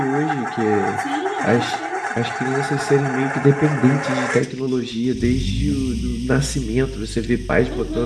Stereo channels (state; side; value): identical; both; correlation 1.00